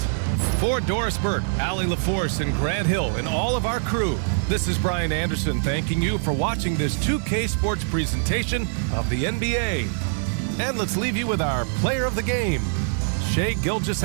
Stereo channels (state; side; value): silent; left; 63 dB below the other